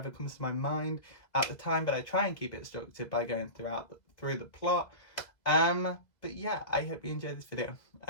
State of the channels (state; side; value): late; right; 2.0 ms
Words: comes to my mind at the time, but I try and keep it structured by going through the plot. But yeah, I hope you enjoyed this video.